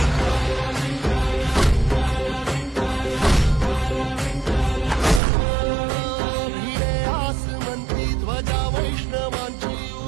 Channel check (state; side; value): drops out; left; at 5.2 s